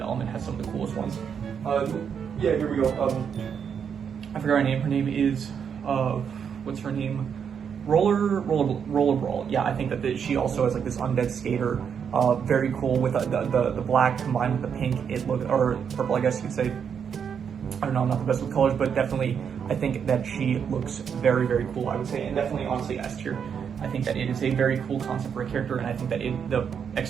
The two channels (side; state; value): left; quieter; 7.3 dB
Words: element has some of the coolest ones. Yeah, here we go. I forgot her name. Her name is, what's her name? Roller Brawl. Yeah, I think that she also has like this undead skater. Very cool with the black combined with the pink. Or purple, I guess you could say. I don't know, I'm not the best with colors, but definitely I think that she looks very cool, I would say, and definitely honestly S tier. I think that it is a very cool concept for a character, and I think that the